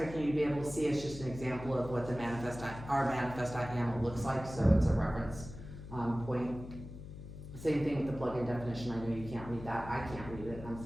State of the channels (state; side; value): noise; left; hum, 12 dB below the sound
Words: you to be able to see. It's just an example of what our manifest.yaml looks like, so it's a reference point. Same thing with the plugin definition. I know you can't read that. I can't read it. I'm